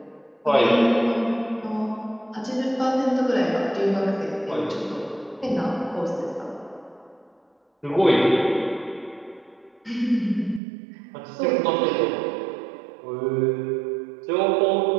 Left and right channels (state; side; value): drops out; left; at 10.6 s